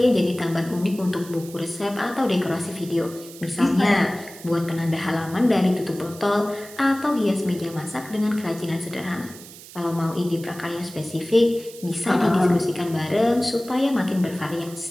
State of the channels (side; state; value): right; noise; hiss, 17 dB below the sound